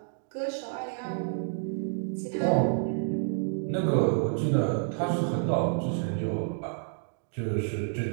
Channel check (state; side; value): silent; left; 58 dB below the other